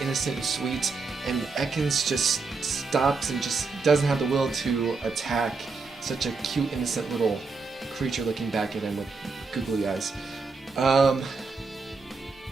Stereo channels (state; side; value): quieter; left; 4.4 dB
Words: innocent and sweet, and Ekans just stops and just doesn't have the will to attack such a cute, innocent little creature looking back at him with googly eyes.